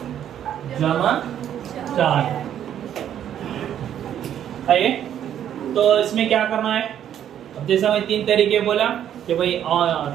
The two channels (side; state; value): left; quieter; 10.2 dB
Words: जमा 4 है। तो इसमें क्या करना है, अब जैसा मैं 3 तरीके बोला कि भाई